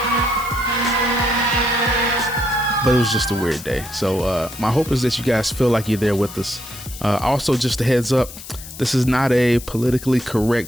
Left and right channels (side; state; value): left; noise; hiss, 14 dB below the sound